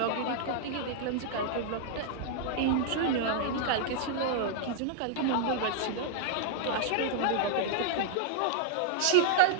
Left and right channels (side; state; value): both; different; correlation -0.01